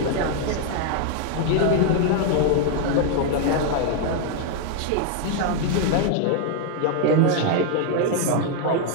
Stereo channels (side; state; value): both; different; correlation 0.00